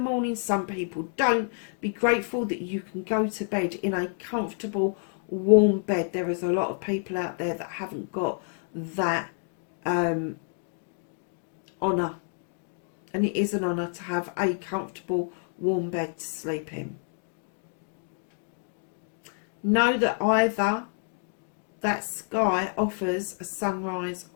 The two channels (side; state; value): right; silent; 59 dB below the other